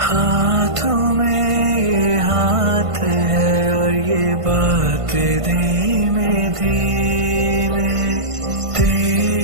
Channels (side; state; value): left; late; 1.5 ms